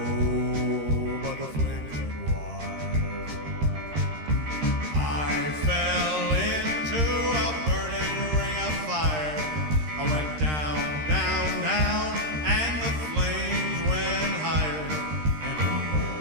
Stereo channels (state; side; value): late; left; 13 ms